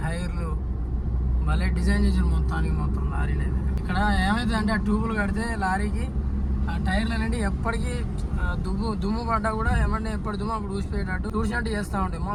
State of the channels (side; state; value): both; identical; correlation 1.00